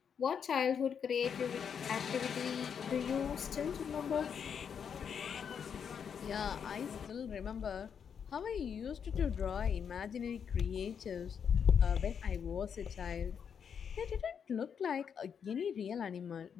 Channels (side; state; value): right; quieter; 7.3 dB